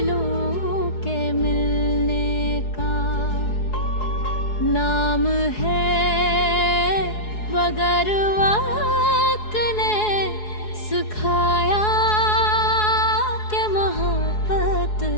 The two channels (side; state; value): right; late; 4.7 ms